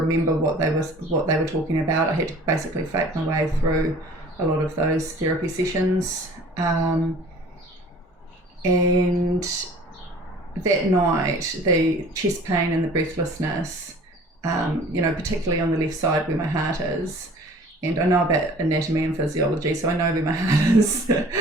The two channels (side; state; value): both; normal; correlation 0.48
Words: what they were talking about. I had to basically fake my way through a lot of those therapy sessions. And that night, the chest pain and the breathlessness, particularly on the left side where my heart is, and I know about anatomy and physiology, so I know where my heart is,